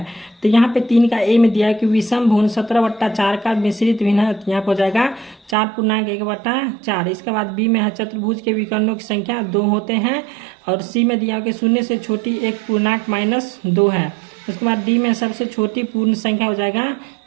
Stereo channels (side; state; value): left; drops out; at 5.6 s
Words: तो यहाँ पे 3 का A में दिया है कि विषम भुन 17/4 का मिश्रित भिन्न है, यहाँ पे हो जाएगा 4.1/4। इसके बाद B में है चतुर्भुज के विकर्णों की संख्या 2 होते हैं, और C में दिया है कि 0 से छोटी 1 पूर्णांक -2 है। उसके बाद D में सबसे छोटी पूर्ण संख्या हो जाएगा